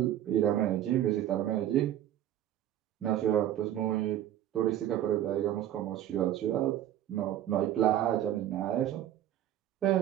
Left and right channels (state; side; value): quieter; left; 12.0 dB